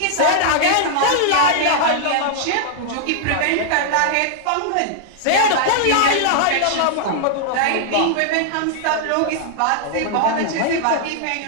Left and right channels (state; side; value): different; both; correlation -0.01